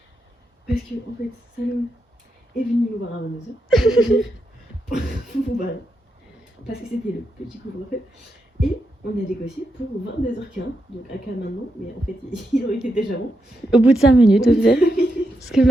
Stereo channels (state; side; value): normal; both; correlation 0.84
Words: Parce que en fait, Salomé est venu nous voir à 22h. Voilà. Parce que c'était le petit couvre-feu. Et on a négocié pour 22h15, donc à cas maintenant, mais en fait il aurait été déjà bon. Au bout de 5 minutes, au final. Parce que